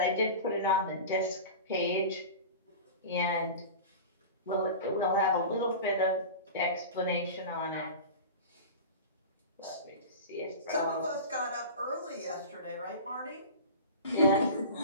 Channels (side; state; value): both; inverted; correlation -0.31